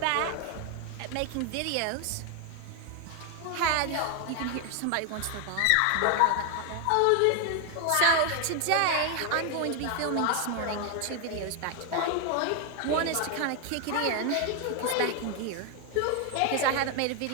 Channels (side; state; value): both; different; correlation 0.01